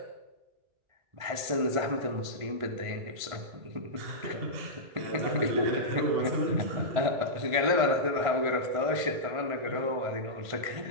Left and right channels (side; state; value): left; late; 1.5 ms